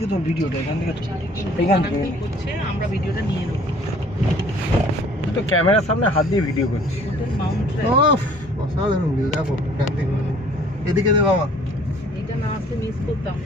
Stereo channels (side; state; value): both; normal; correlation 0.55